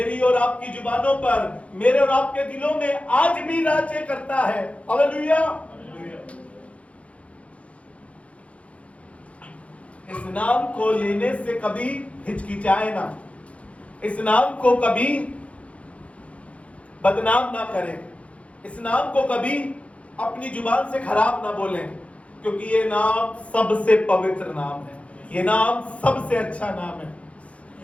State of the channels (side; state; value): right; late; 0.063 ms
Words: और आपकी जुबानों पर, मेरे और आपके दिलों में आज भी राज्य करता है। हालेलुया। इस नाम को लेने से कभी हिचकिचाए ना, इस नाम को कभी बदनाम ना करें, इस नाम को कभी अपनी जुबान से खराब ना बोलें, क्योंकि ये नाम सबसे पवित्र नाम है, ये नाम सबसे अच्छा नाम है।